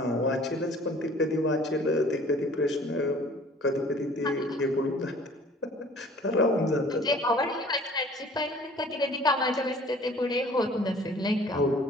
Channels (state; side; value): normal; both; correlation 0.51